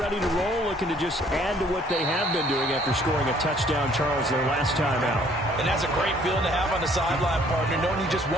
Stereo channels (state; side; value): normal; both; correlation 0.60